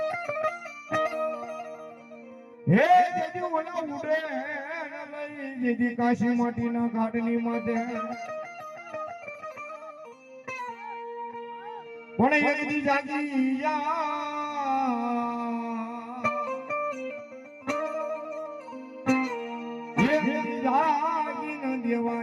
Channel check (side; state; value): both; identical; correlation 1.00